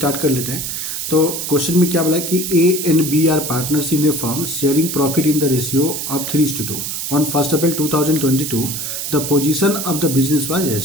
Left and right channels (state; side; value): noise; right; hiss, 4 dB below the sound